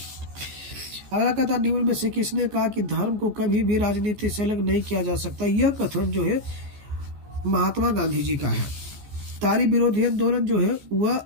अगला कहता निम्न में से किसने कहा कि धर्म को कभी भी राजनीति से अलग नहीं किया जा सकता। यह कथन जो है महात्मा गांधी जी का है। तारी विरोधी आंदोलन जो है वह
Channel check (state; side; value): late; left; 14 ms